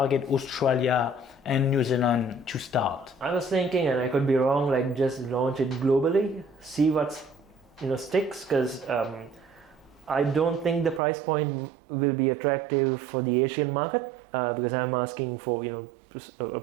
Australia and New Zealand to start? I was thinking, and I could be wrong, like just launch it globally, see what's sticks, because I don't think the price point will be attractive for the Asian market, because I'm asking for a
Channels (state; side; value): drops out; left; at 11.0 s